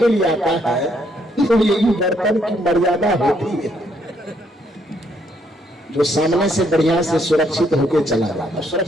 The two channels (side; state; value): both; normal; correlation 0.71